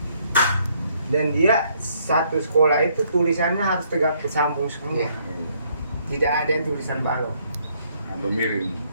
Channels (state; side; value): inverted; both; correlation -0.69